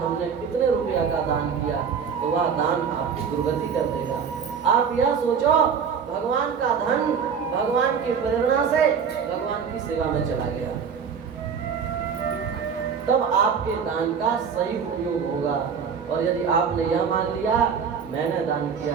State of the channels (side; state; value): left; quieter; 6.6 dB